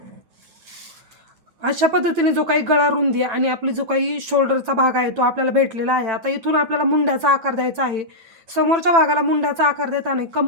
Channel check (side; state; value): left; late; 9.0 ms